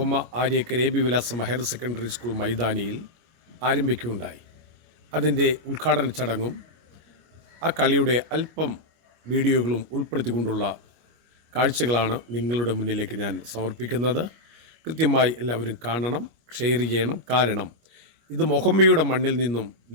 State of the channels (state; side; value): late; left; 25 ms